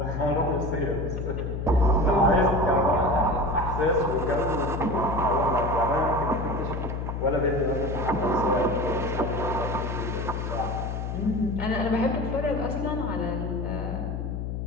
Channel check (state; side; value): noise; left; hum, 4 dB below the sound